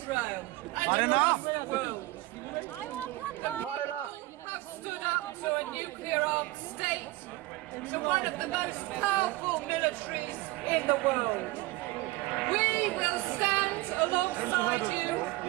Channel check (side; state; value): left; quieter; 19.7 dB